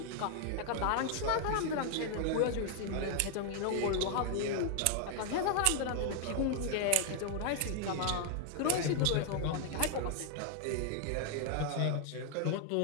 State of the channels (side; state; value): both; different; correlation 0.00